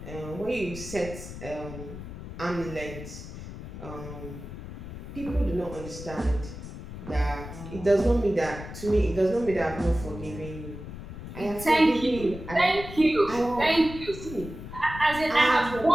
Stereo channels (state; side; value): noise; left; rumble, 11 dB below the sound